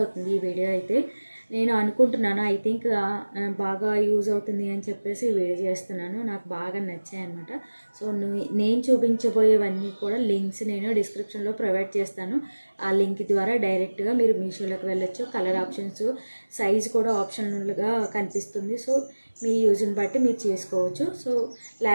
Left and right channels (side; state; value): both; inverted; correlation -1.00